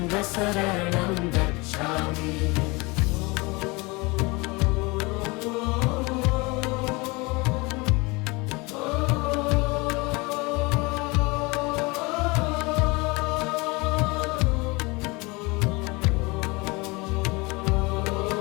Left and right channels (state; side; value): quieter; right; 25.8 dB